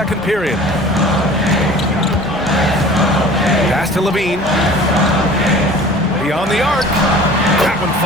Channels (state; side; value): noise; left; hum, 24 dB below the sound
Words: period. Pass to Levine. Beyond the arc. That one